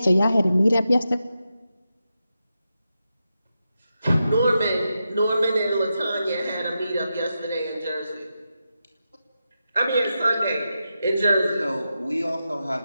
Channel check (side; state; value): both; inverted; correlation -0.88